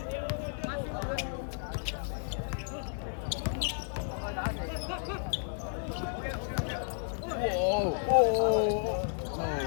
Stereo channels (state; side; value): silent; right; digital silence